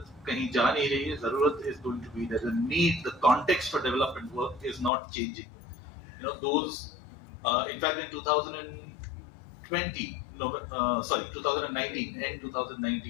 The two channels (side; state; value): right; drops out; at 4.9 s